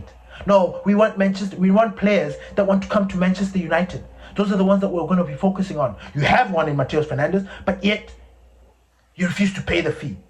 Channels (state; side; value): identical; both; correlation 1.00